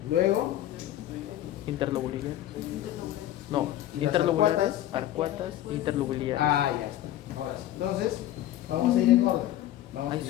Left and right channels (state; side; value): quieter; right; 13.2 dB